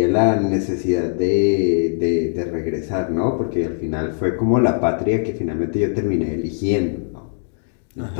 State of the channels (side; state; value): right; silent; digital silence